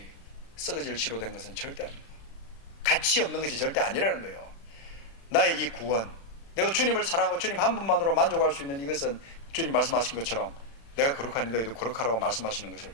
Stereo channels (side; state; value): right; late; 36 ms